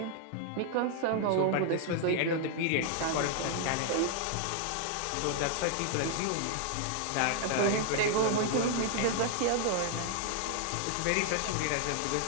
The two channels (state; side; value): different; both; correlation 0.00